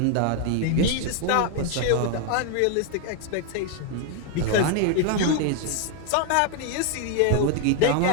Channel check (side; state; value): both; different; correlation 0.00